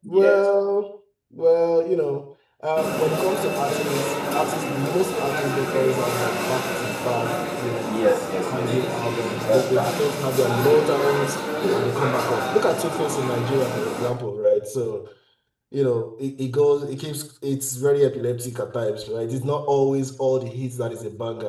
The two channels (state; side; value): identical; both; correlation 1.00